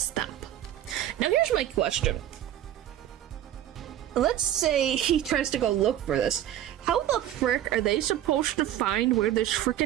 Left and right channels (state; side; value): quieter; left; 11.9 dB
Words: Now here's my question. Let's say he tries to go look for this. How the frick are they supposed to find where this